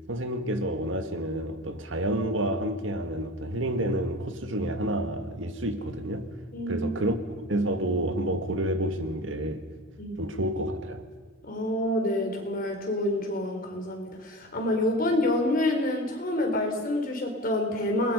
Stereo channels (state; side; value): normal; both; correlation 0.33